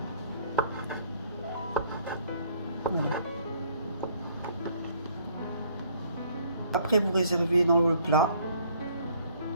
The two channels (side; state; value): both; inverted; correlation -0.62